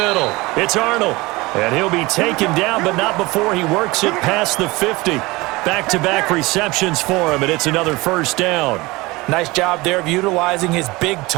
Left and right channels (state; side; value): quieter; left; 22.2 dB